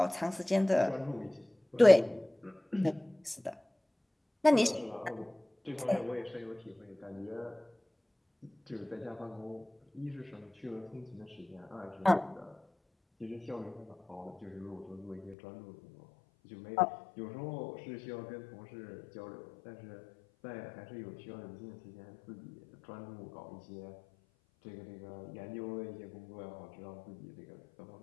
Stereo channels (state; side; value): drops out; right; at 15.4 s